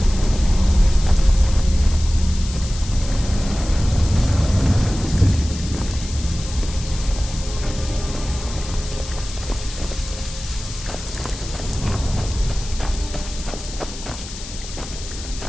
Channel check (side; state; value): left; noise; hiss, 12 dB below the sound